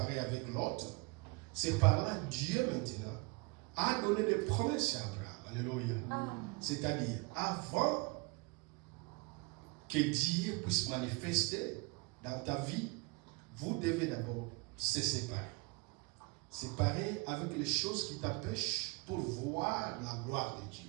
avec Lot, c'est par là Dieu maintenant a donné des promesses à Abraham. Alléluia. C'est-à-dire, avant que Dieu puisse manifester dans ta vie, vous devez d'abord se séparer. Séparer avec les choses qui t'empêchent pour voir la gloire de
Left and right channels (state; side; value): quieter; left; 28.5 dB